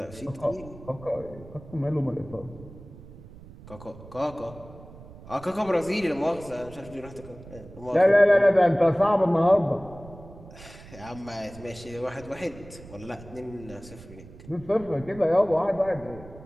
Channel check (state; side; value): noise; right; rumble, 18 dB below the sound